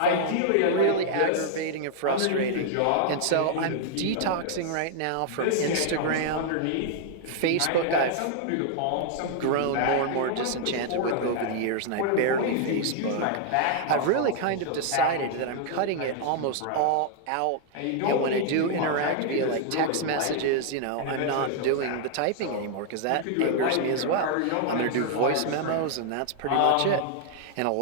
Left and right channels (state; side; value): different; both; correlation 0.00